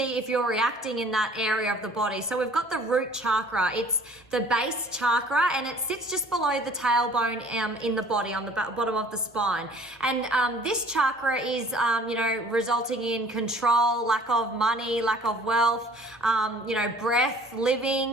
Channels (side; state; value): both; normal; correlation 0.52